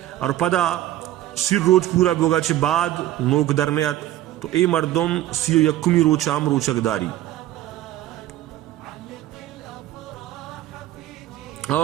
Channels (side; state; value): left; quieter; 14.1 dB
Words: اور پدا 30 روز پورا بوگا چھ بعد نوک درنیت تو اے مردم 31 روچہ ہم روچک داری.